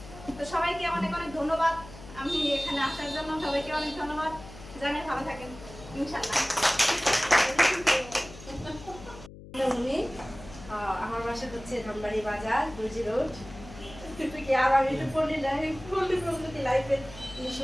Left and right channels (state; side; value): noise; left; hum, 16 dB below the sound